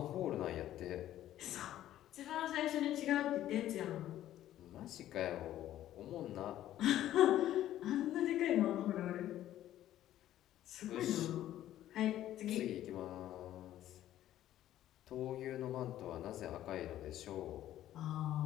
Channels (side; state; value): right; quieter; 12.8 dB